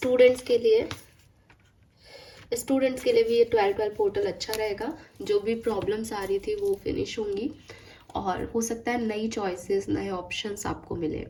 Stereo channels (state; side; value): identical; both; correlation 1.00